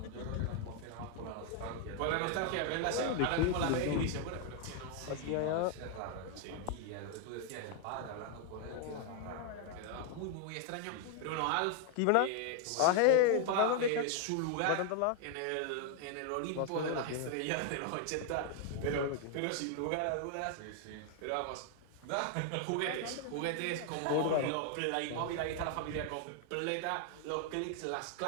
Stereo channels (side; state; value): both; different; correlation 0.00